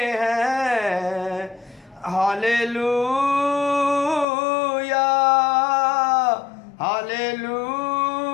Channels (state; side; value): drops out; right; at 4.2 s